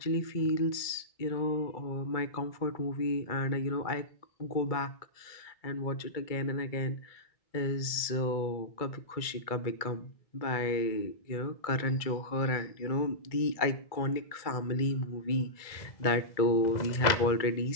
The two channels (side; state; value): right; late; 2.2 ms